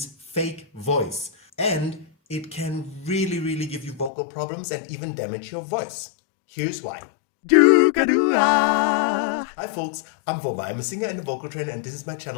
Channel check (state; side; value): drops out; right; at 4.1 s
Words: fake voice. And it can really give you vocal problems and even damage your voice. Here's why. Hi folks, I'm Voma. I'm a singer and a vocal trainer, and this is my